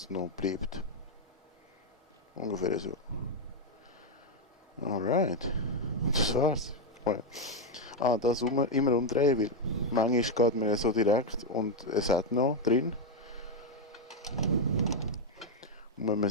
noch bleibt. Ungefähr so. Alright. Das war's. Das immer umdrehen, weil manchmal geht man ja so direkt und es hat noch drin. Und wenn man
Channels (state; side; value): normal; both; correlation 0.02